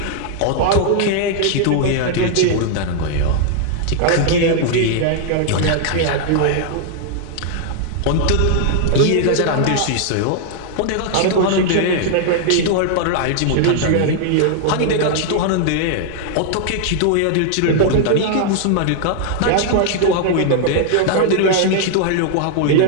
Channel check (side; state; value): both; different; correlation -0.01